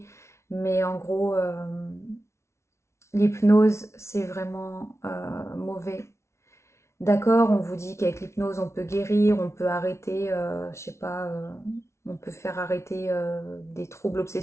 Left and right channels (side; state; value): right; late; 0.13 ms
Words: mais en gros, l'hypnose, c'est vraiment mauvais. D'accord, on vous dit qu'avec l'hypnose, on peut guérir, on peut arrêter, je sais pas, on peut faire arrêter des troubles